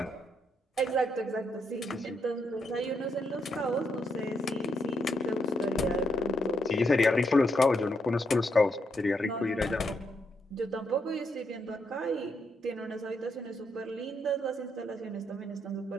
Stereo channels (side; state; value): both; normal; correlation 0.78